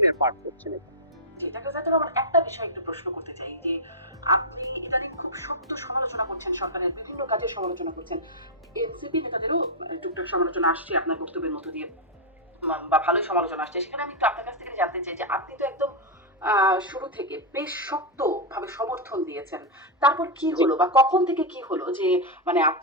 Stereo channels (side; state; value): both; normal; correlation -0.03